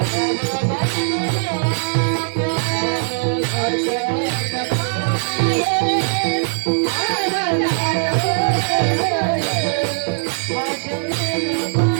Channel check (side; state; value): left; silent; digital silence